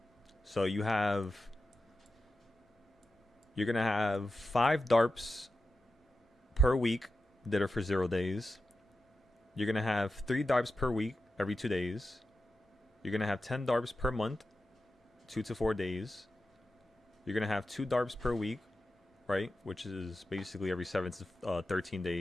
So you're going to have 5 DARPs per week that are for 0 days. You're going to have 3 DARPs per week every 2 days. You're going to have 10 DARPs per month, 2 to 4 days. You're going to have 2 DARPs per week, right? Which is basically every 7 to 13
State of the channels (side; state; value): both; normal; correlation 0.91